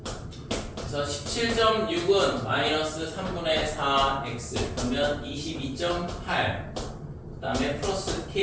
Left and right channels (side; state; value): both; identical; correlation 1.00